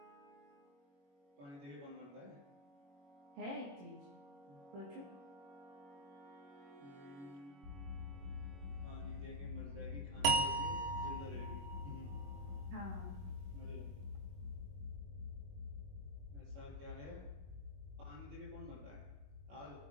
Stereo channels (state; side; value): late; left; 21 ms